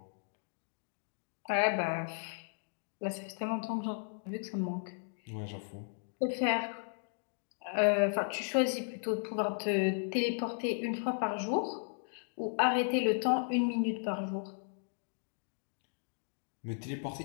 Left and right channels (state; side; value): silent; right; digital silence